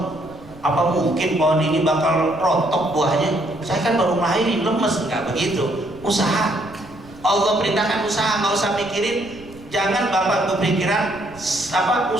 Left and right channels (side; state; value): right; noise; rumble, 21 dB below the sound